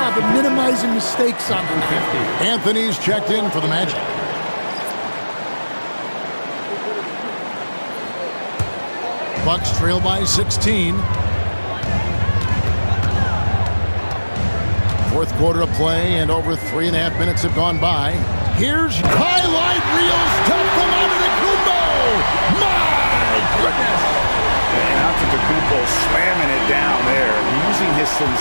of minimizing mistakes on the night. Anthony's checked in for the Magic. Bucks trail by 16. Fourth quarter of play, and over 3.5 minutes have gone by. Here's highlight reel stuff from Antetokounmpo. My goodness! And Antetokounmpo slamming it down there, using his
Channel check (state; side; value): inverted; both; correlation -1.00